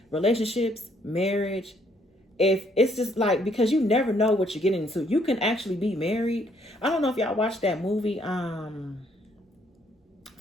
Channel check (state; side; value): normal; both; correlation 0.68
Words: Relationships, marriage, if it's just like, because you never know what you're getting into. You can actually be married. I don't know if y'all watched that movie,